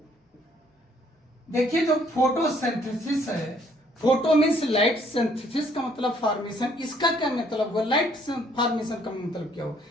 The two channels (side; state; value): both; normal; correlation 0.64